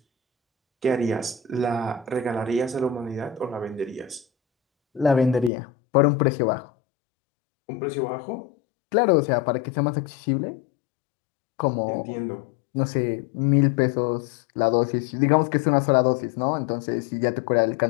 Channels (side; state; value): right; drops out; at 5.5 s